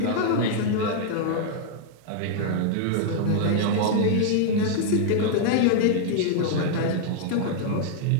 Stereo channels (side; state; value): both; different; correlation -0.01